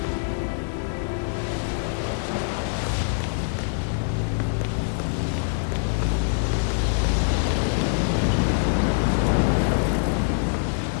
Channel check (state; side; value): silent; right; digital silence